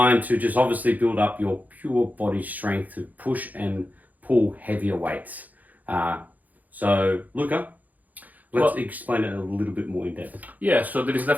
to just obviously build up your pure body strength to push and pull heavier weights. So, Luca, let's explain it a little bit more in depth. Yeah, so there is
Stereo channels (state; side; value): late; left; 0.080 ms